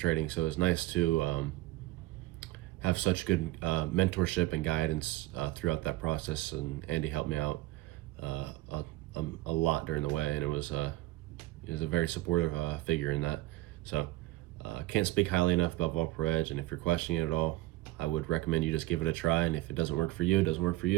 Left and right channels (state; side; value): quieter; left; 18.5 dB